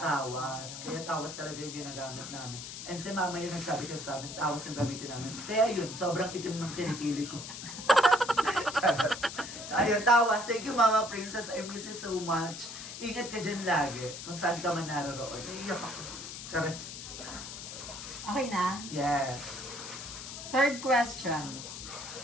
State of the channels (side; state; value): left; noise; hiss, 9 dB below the sound